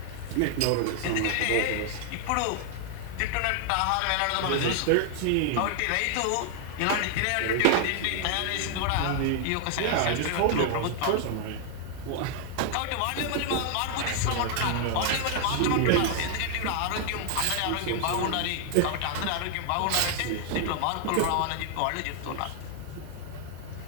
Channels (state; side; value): different; both; correlation 0.00